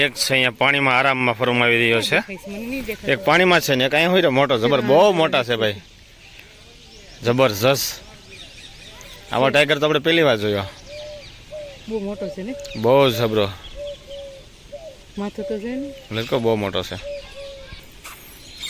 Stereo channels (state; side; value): identical; both; correlation 1.00